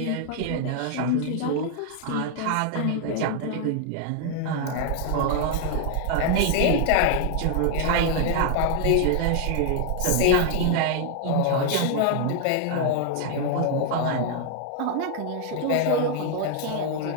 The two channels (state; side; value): different; both; correlation 0.00